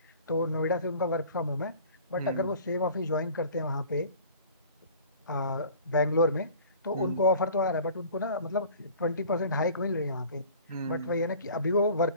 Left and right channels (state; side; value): inverted; both; correlation -0.46